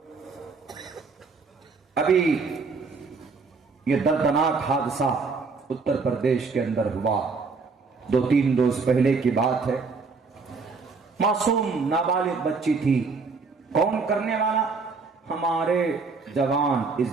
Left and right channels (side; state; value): left; quieter; 4.6 dB